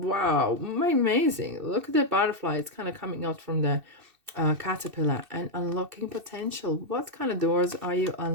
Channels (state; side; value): late; left; 2.7 ms